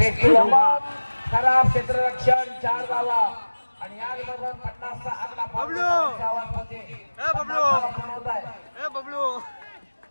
टू लंबा खराब क्षेत्ररक्षण 4 धावा आणि याचबरोबर 50 चा आकडा पावण्याच्या आवाजमध्ये बनवत आहे.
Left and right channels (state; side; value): inverted; both; correlation -1.00